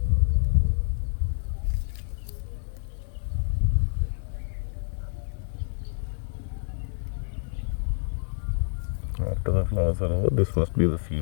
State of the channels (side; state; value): right; silent; digital silence